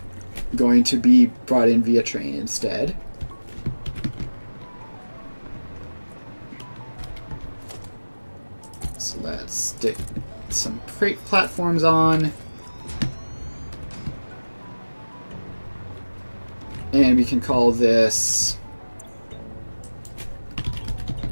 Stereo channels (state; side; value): inverted; both; correlation -1.00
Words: going to be brought in via train instead. So let's stick some freight platforms on. And we can call this